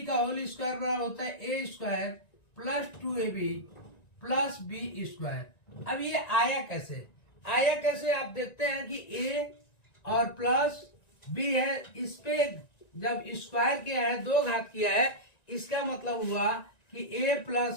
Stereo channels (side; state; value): right; late; 1.9 ms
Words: का होल स्क्वायर बराबर होता है a square plus 2ab plus B square. अब ये आया कैसे आप देखते हैं कि a और प्लस b है, इस पे जब स्क्वायर किया है, दो घात किया है, इसका मतलब हुआ कि a